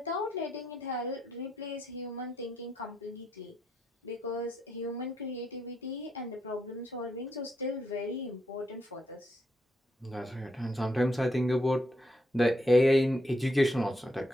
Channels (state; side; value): normal; both; correlation 0.79